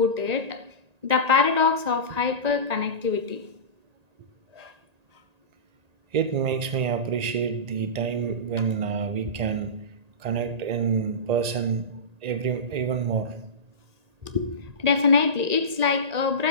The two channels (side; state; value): left; late; 1.8 ms